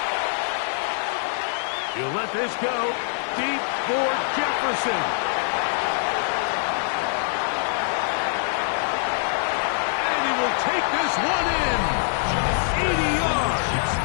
He'll let this go deep for Jefferson. And he will take this one in. 80 yards.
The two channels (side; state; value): right; silent; digital silence